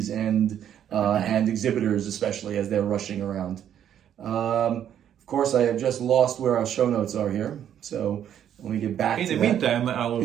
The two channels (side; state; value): left; quieter; 9.9 dB